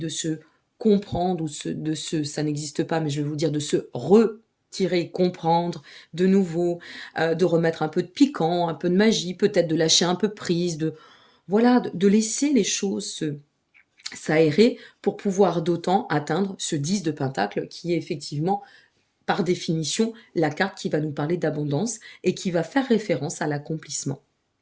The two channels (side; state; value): both; identical; correlation 1.00